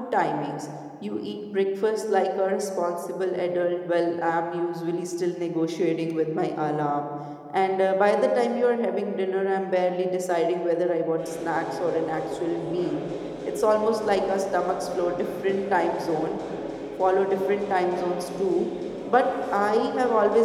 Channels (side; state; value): both; identical; correlation 1.00